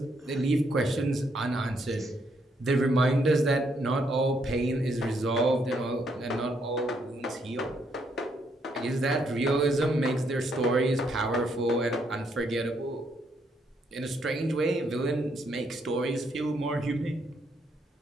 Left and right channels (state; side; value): normal; both; correlation 0.74